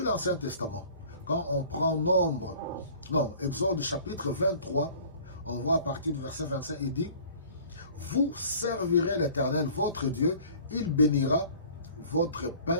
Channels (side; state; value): both; inverted; correlation -0.48